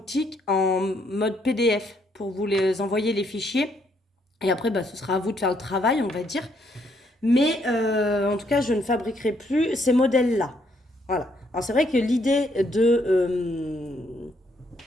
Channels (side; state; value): both; normal; correlation 0.71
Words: en mode PDF pour vous les envoyer les fichiers. Et après, bah, ce sera à vous de faire le travail, on va dire. Mais en tout cas, je ne fabriquerai plus ces modèles-là. Voilà. Alors c'est vrai que l'idée